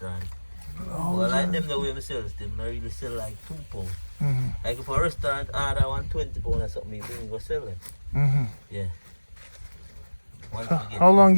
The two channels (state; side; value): inverted; both; correlation -1.00